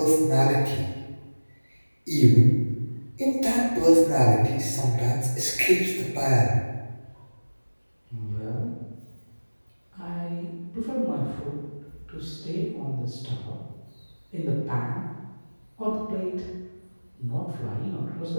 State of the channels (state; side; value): inverted; both; correlation -1.00